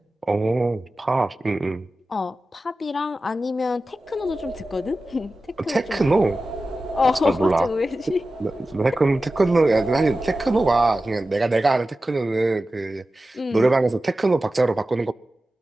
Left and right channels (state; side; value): normal; both; correlation 0.94